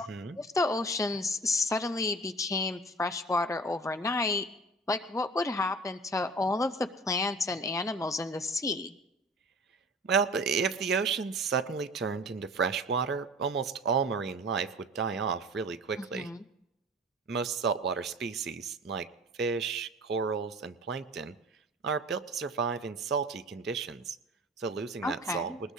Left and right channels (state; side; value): normal; both; correlation 0.41